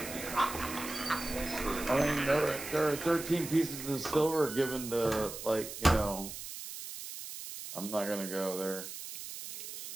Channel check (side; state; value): right; noise; hiss, 9 dB below the sound